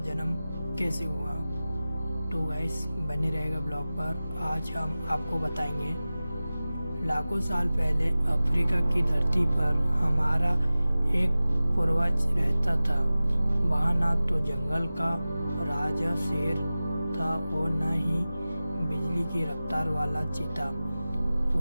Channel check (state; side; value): inverted; both; correlation -0.96